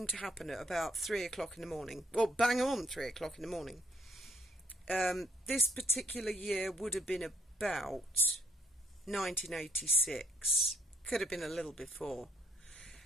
to happen at about 3 o'clock in the morning. Well, bang on 3 o'clock in the morning. This particular year would have been about 1986. Could have been a little before.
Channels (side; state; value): both; normal; correlation 0.66